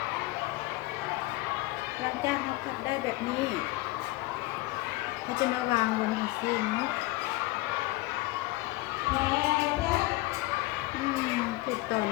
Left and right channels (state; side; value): quieter; right; 20.0 dB